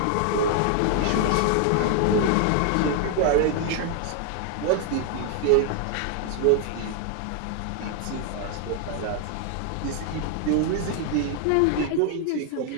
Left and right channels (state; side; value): different; both; correlation 0.00